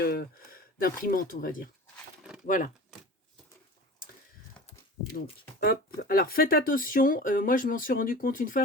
d'imprimante, on va dire. Voilà. Donc, hop. Alors, faites attention. Moi, je m'en suis rendu compte une fois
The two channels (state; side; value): normal; both; correlation 0.37